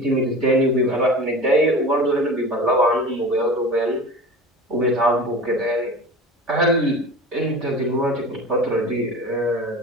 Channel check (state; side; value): normal; both; correlation 0.35